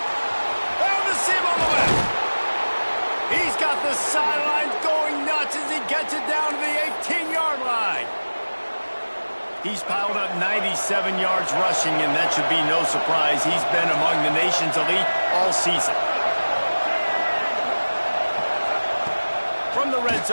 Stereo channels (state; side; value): inverted; both; correlation -1.00